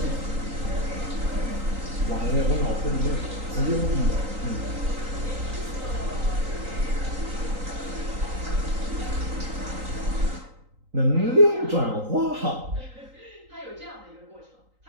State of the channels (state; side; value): late; left; 3.9 ms